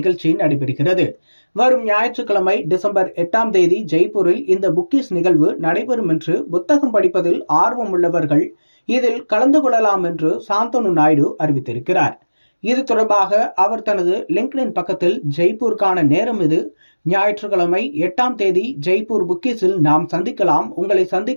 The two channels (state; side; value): inverted; both; correlation -1.00